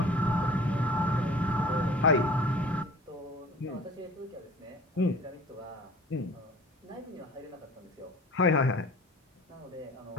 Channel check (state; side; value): normal; both; correlation 0.45